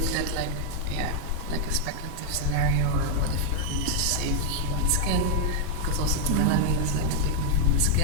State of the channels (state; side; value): different; both; correlation 0.00